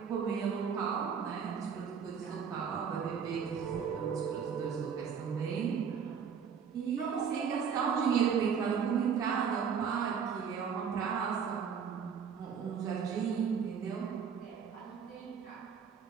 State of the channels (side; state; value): left; quieter; 6.9 dB